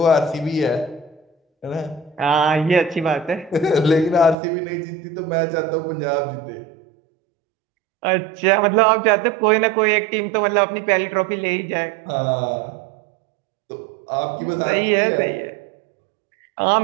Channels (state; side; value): drops out; left; at 4.4 s